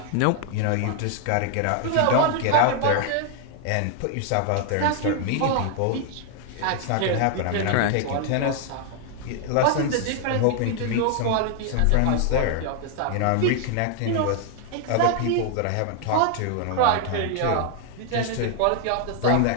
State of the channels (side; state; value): both; different; correlation 0.00